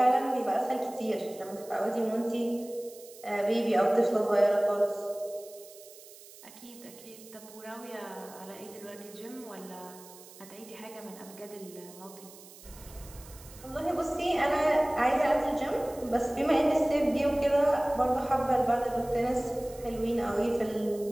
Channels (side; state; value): right; noise; hiss, 20 dB below the sound